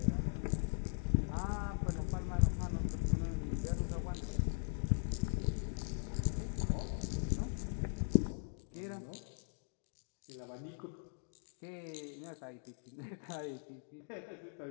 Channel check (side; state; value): right; silent; digital silence